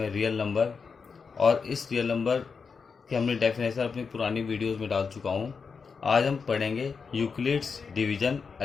है रियल नंबर। और इस रियल नंबर की हमने डेफिनेशन अपनी पुरानी वीडियोस में डाल चुका हूँ। आज हम पढ़ेंगे यूक्लिड्स डिवीजन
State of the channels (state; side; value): quieter; right; 5.4 dB